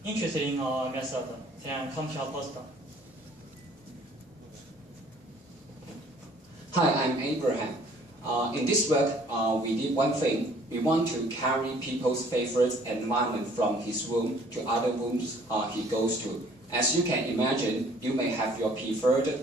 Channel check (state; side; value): normal; both; correlation 0.57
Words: interested in our method, then come to our poster. Hi, I'm Abraham. In this work, we did one thing. We want to carry people's favorite environment from his room to other rooms he goes to. As you can imagine, you may have your preferred